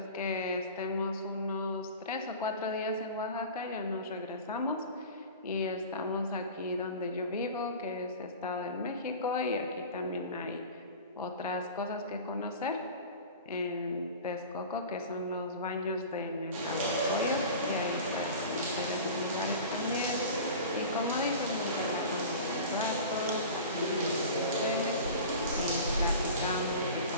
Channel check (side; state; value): both; inverted; correlation -0.36